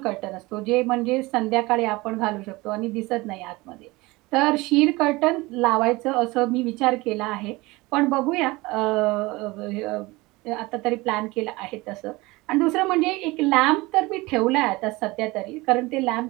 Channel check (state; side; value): quieter; left; 22.1 dB